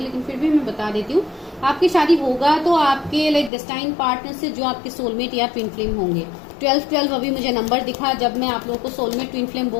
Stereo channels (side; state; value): right; drops out; at 3.5 s